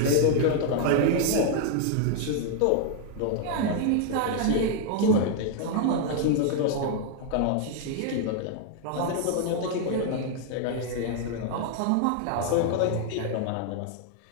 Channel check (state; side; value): different; both; correlation 0.00